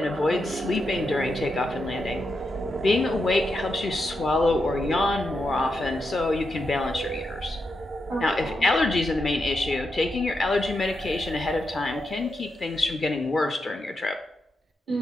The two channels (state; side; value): normal; both; correlation 0.85